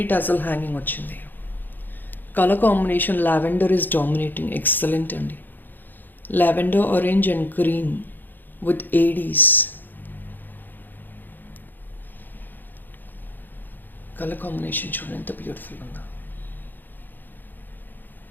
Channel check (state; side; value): late; right; 0.090 ms